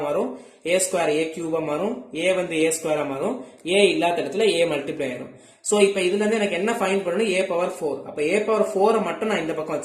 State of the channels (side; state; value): both; identical; correlation 1.00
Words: மாறும், a square a cube ஆ மாறும், a வந்து a square ஆ மாறும், a இல்லாத இடத்துல a மல்டிப்ளை ஆகும். சோ இப்போ இதுல இருந்து எனக்கு என்ன ஃபைண்ட் பண்ணனும் a power 4. அப்ப a power 4 மட்டும் நான் இந்த பக்கம்